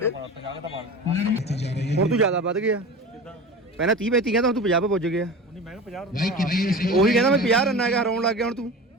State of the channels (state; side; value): normal; both; correlation 0.32